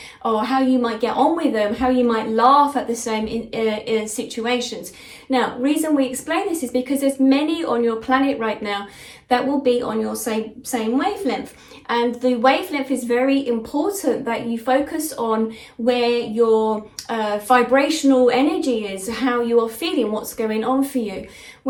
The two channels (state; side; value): identical; both; correlation 1.00